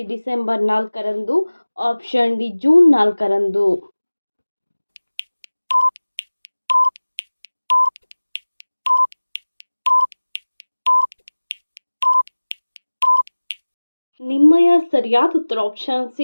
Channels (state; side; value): inverted; both; correlation -1.00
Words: ಡಿಸೆಂಬರ್ 4ರಂದು, ಆಪ್ಷನ್ ಡಿ ಜೂನ್ 4ರಂದು. ನಿಮ್ಮಯ ಸರಿಯಾದ ಉತ್ತರ ಆಪ್ಷನ್